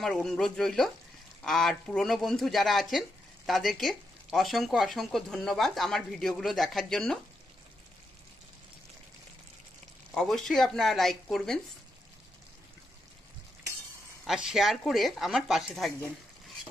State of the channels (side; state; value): both; normal; correlation 0.83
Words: অনুরোধ রইল। আর পুরনো বন্ধু যারা আছেন তাদেরকে অসংখ্য অসংখ্য ধন্যবাদ আমার ভিডিওগুলো দেখার জন্য। অবশ্যই আপনারা লাইক করবেন আর শেয়ার করে আমার পাশে থাকবেন।